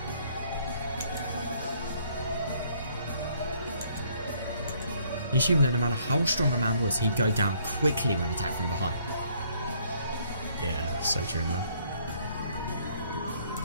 He assumed that no matter how strong a man was, he'd go down quickly when attacked from behind. Yeah, so true, man.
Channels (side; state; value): both; inverted; correlation -0.64